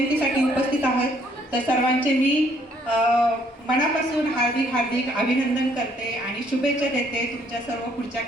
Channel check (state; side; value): normal; both; correlation 0.66